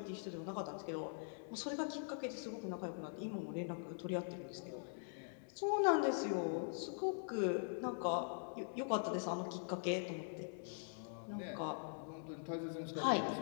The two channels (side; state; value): right; silent; digital silence